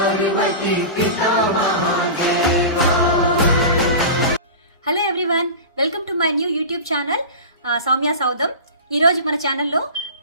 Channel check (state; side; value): inverted; both; correlation -0.31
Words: पिता Mahadeva. Hello everyone, welcome to my new YouTube channel Soumya Soudam. ఈరోజు మన ఛానల్లో